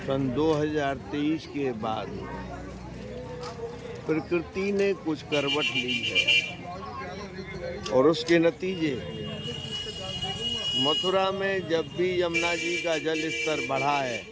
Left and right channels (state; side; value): identical; both; correlation 1.00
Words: सन 2023 के बाद प्रकृति ने कुछ करवट ली है और उसके नतीजे मथुरा में जब भी यमुना जी का जल स्तर बढ़ा है,